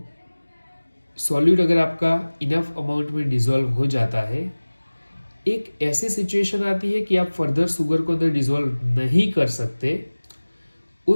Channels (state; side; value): inverted; both; correlation -1.00